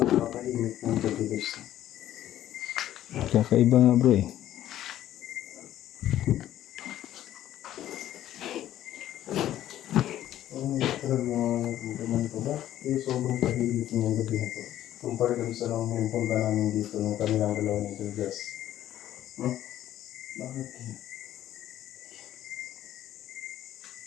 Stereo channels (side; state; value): right; quieter; 12.5 dB